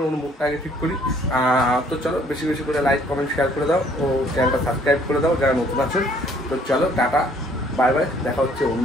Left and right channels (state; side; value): normal; both; correlation 0.60